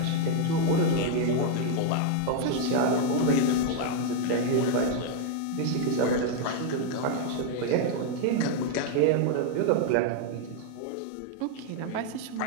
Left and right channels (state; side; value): different; both; correlation 0.00